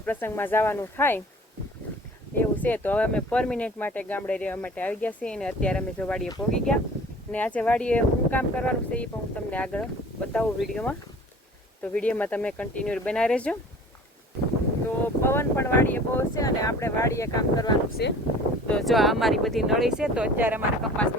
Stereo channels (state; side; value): normal; both; correlation 0.46